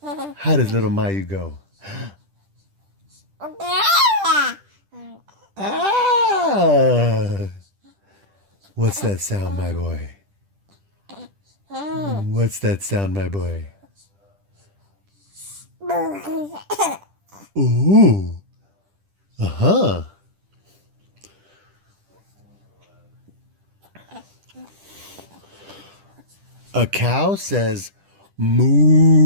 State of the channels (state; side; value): late; left; 10 ms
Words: How does little Mayu go? Ah! What's that sound, my boy? What's that sound, my boy? Ooh. Uh-huh. A cow says